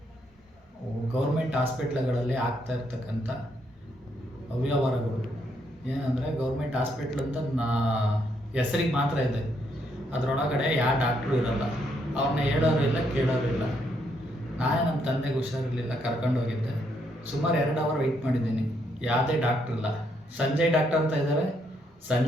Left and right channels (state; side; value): normal; both; correlation 0.74